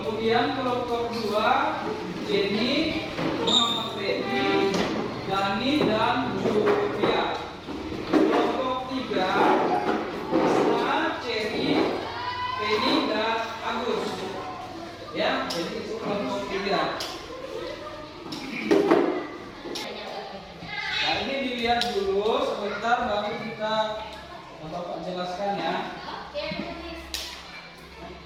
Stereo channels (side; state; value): both; identical; correlation 1.00